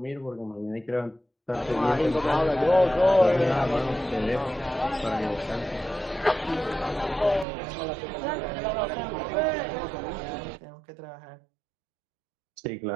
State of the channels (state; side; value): drops out; left; at 7.5 s